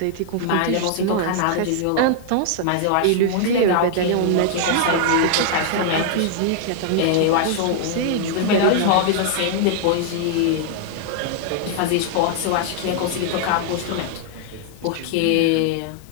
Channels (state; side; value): different; both; correlation -0.01